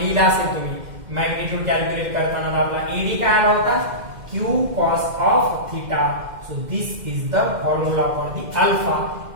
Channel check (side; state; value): left; late; 2.1 ms